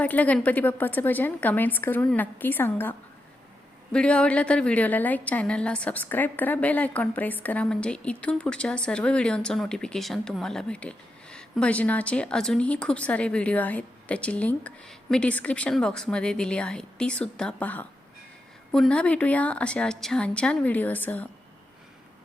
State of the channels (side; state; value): both; normal; correlation 0.86